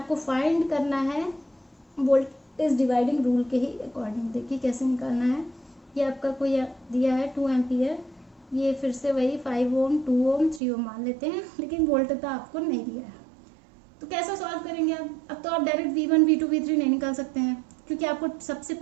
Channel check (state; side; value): drops out; left; at 10.6 s